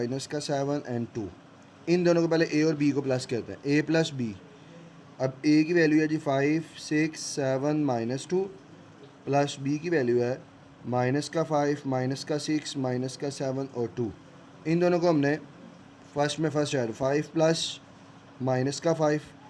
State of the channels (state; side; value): identical; both; correlation 1.00